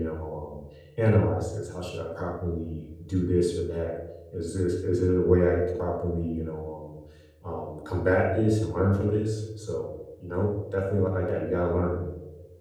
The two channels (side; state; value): both; identical; correlation 1.00